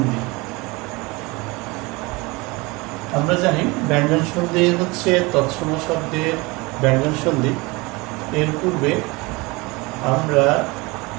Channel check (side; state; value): left; quieter; 24.6 dB